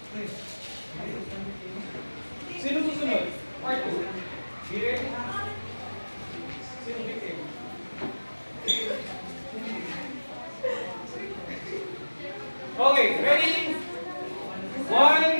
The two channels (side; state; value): both; inverted; correlation -1.00